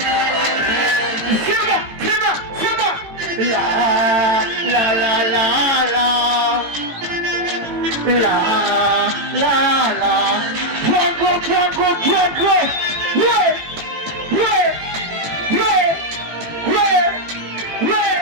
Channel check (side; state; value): left; late; 18 ms